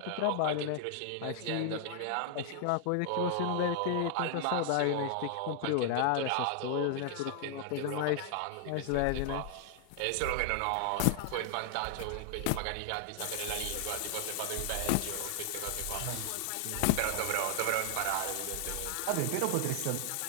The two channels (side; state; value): both; different; correlation 0.00